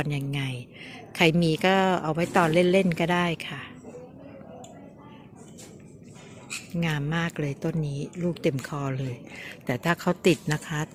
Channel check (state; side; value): identical; both; correlation 1.00